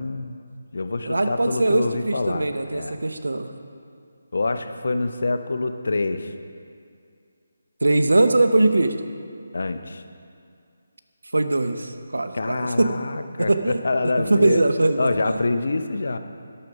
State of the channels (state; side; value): inverted; both; correlation -0.94